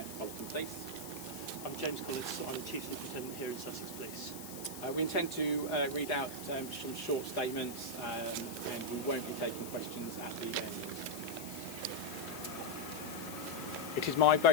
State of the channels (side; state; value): left; noise; hiss, 11 dB below the sound